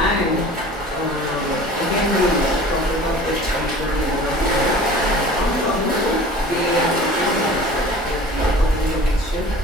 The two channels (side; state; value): both; normal; correlation 0.43